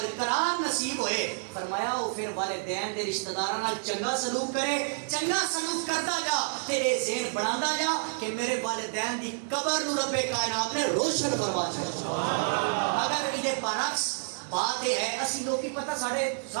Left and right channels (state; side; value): silent; left; digital silence